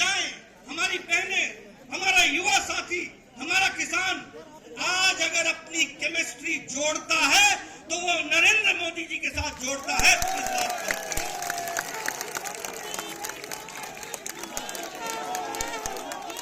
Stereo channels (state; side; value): identical; both; correlation 1.00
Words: हमारी बहनें, हमारा युवा साथी, हमारा किसान आज अगर अपनी केमिस्ट्री जोड़ता है तो वो नरेंद्र मोदी जी के साथ जोड़ता है। इस बात पर